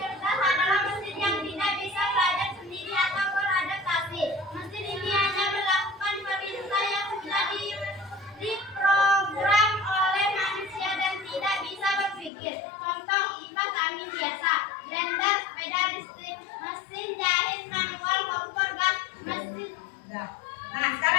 cerdas adalah mesin yang tidak bisa belajar sendiri atau beradaptasi. Mesin ini hanya melakukan perintah yang sudah diprogram oleh manusia dan tidak bisa berpikir. Contoh kipas angin biasa, blender, sepeda listrik, mesin jahit manual, kompor gas, mesin. Nah,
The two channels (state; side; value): drops out; right; at 12.3 s